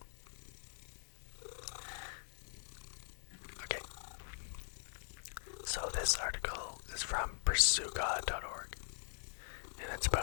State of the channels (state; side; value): silent; right; digital silence